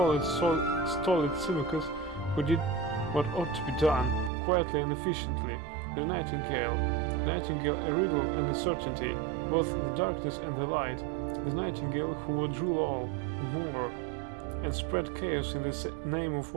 Symmachus who did what ought to be done, quietly and efficiently, the Nightingale a riddle and a certainty, both the darkness and the light, the Nightingale who would rule all, more, and spread chaos in the name of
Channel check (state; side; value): drops out; left; at 4.3 s